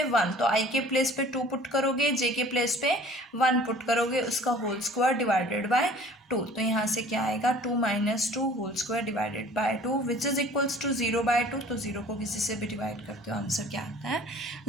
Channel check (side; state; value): both; normal; correlation 0.50